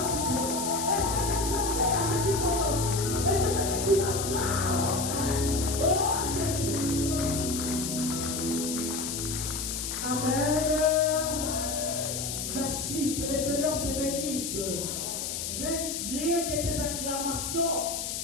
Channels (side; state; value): left; noise; hiss, 4 dB below the sound